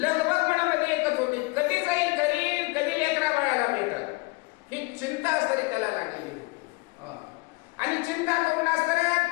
मनामध्ये एकच होती, कधी जाईल घरी, कधी लेकरा बाळाला भेटल, ही चिंता असताना त्याला लागलेली होती. आणि चिंता करून असताना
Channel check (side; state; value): right; quieter; 26.7 dB